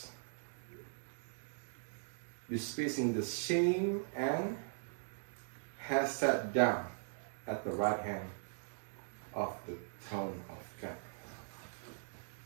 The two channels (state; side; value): silent; left; digital silence